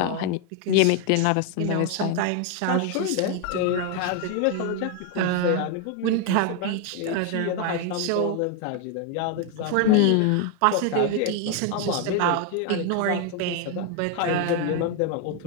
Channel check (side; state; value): both; different; correlation 0.01